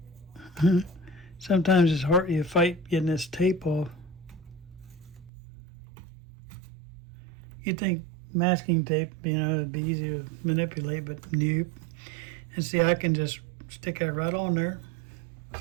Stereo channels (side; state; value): left; drops out; at 5.3 s